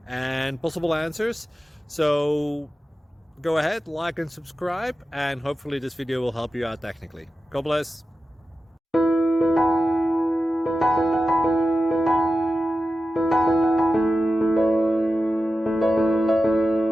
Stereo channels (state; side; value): normal; both; correlation 0.92